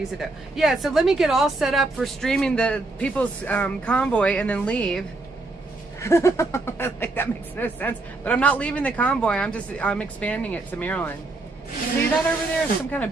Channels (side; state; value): left; quieter; 3.0 dB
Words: it though. Yeah, so let me get all set up for streaming the people's convoy and then leave. Like, that makes no sense. But I'm not leaving the convoy. I'm expanding it to Maryland. See that over there? Some kind